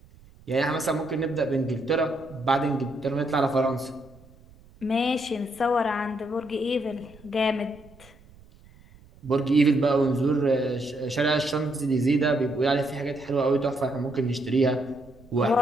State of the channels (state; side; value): noise; right; rumble, 25 dB below the sound